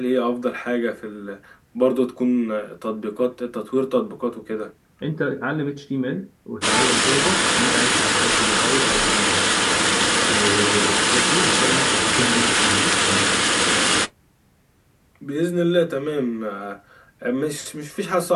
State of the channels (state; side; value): identical; both; correlation 1.00